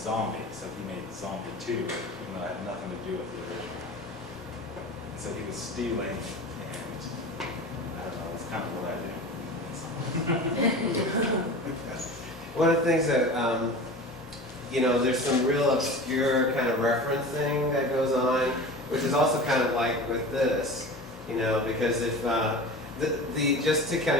so he made Zombie 2, even though it had nothing to do with the original. And so he was stealing, and I don't know, that's kind of what I do. One of the things that, you know, there's some real obscure kind of referencing that goes on, which is also kind of like with this. You know, because if just to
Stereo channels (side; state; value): both; normal; correlation 0.34